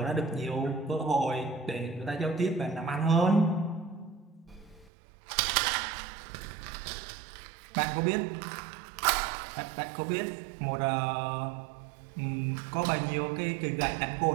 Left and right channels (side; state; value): left; drops out; at 4.9 s